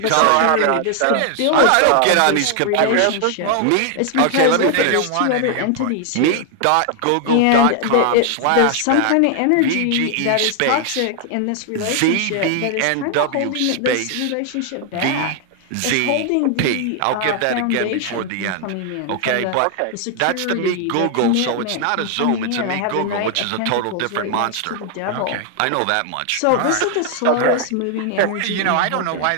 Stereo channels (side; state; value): both; different; correlation 0.00